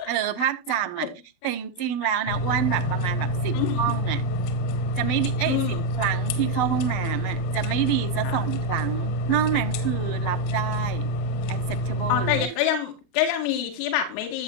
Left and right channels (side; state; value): right; late; 28 ms